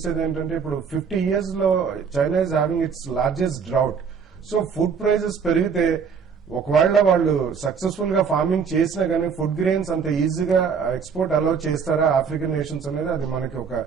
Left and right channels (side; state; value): left; quieter; 6.2 dB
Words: ఏంటంటే ఇప్పుడు 50 years లో China is having its largest drought. So food prices పెరిగితే ఒకవేళ వాళ్ళు సక్సెస్ఫుల్ గా ఫార్మింగ్ చేసినా కానీ ఫుడ్ గ్రెయిన్స్ అంత ఈజీగా ఎక్స్పోర్ట్ అలౌ చేస్తారా ఆఫ్రికన్ నేషన్స్ అనేది అది మనకి ఒక